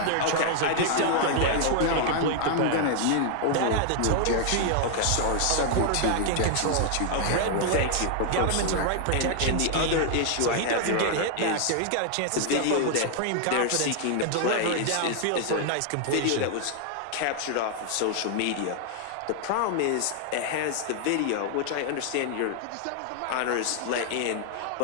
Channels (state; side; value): different; both; correlation 0.00